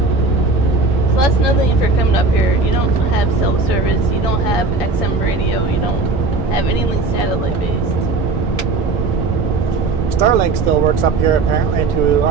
So that's another thing if you're coming up here. You don't have cell service, you don't have XM radio, you don't have anything satellite based. Starlink still works up here apparently to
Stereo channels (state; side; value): quieter; left; 3.7 dB